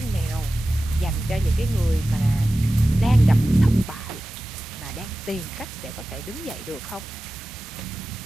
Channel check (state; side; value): normal; both; correlation 0.95